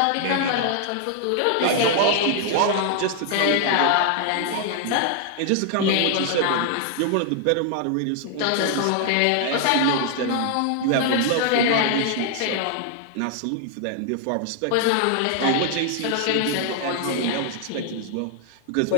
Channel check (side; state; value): both; different; correlation 0.00